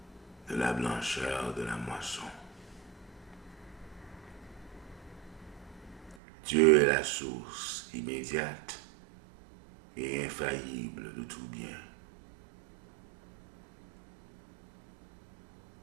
de la blancheur de la moisson. Dieu est la source immédiate et infaillible de tout bien.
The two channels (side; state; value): left; drops out; at 6.2 s